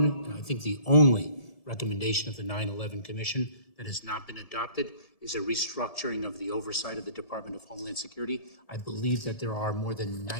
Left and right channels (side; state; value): right; late; 1.7 ms